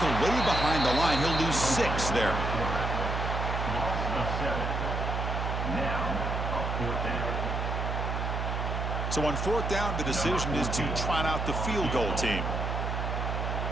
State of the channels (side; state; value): right; noise; hum, 2 dB below the sound